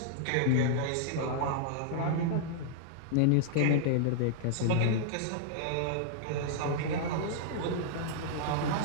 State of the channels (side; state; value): both; different; correlation -0.01